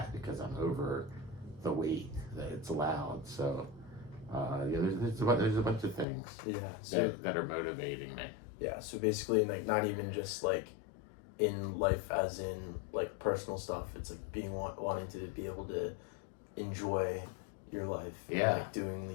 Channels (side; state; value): right; drops out; at 6.1 s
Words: because I'm over the weight that it's allowed. So there's a bunch of things that are motivating me. Yeah, so basically not even just in life as in personal stuff. It's being wanting to be able to enjoy your life. Yeah. Doing